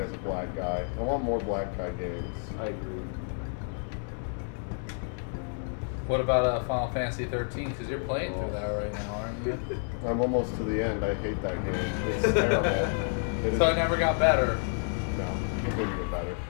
as a black guy. I want more black guy games. I agree. What about Final Fantasy 13? Because you're playing through that right now, aren't you? I'm almost to the end. I hate that game. It's terrible. It is- So it never got better. No, it didn't get better.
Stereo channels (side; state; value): right; silent; 55 dB below the other